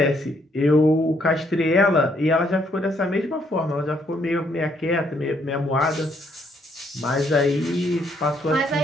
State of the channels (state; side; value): normal; both; correlation 0.70